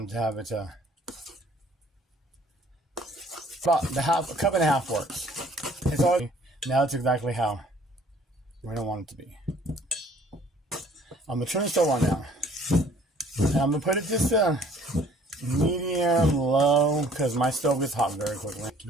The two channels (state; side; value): normal; both; correlation 0.56